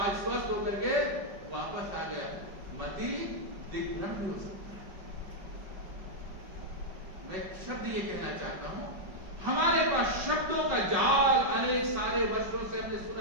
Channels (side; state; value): left; late; 5.2 ms